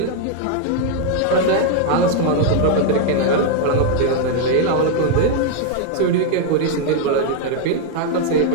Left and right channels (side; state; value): both; different; correlation 0.01